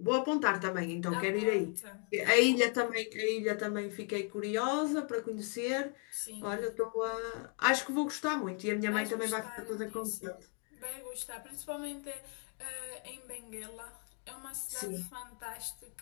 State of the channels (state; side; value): quieter; right; 38.6 dB